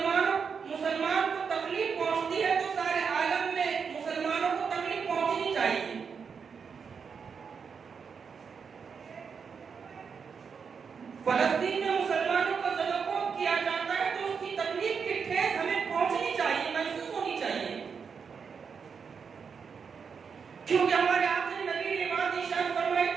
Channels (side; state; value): left; quieter; 6.1 dB